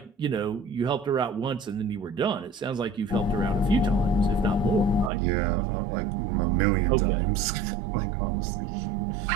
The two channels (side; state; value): left; drops out; at 5.1 s